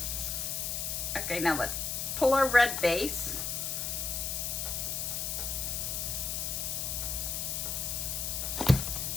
Okay, now let's pull our red base.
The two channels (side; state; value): left; noise; hiss, 1 dB below the sound